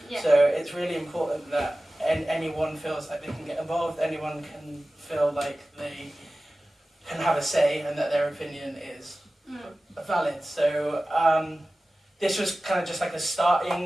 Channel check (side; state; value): both; normal; correlation 0.96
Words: So it's really important that anyone feels like they can get involved, anyone can feel like they can have a say and that their opinion is valid. So this was kind of just like a